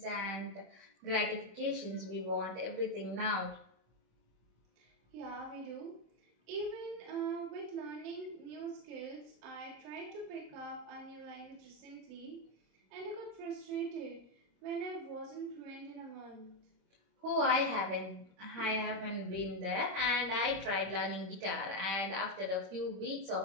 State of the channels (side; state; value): left; late; 26 ms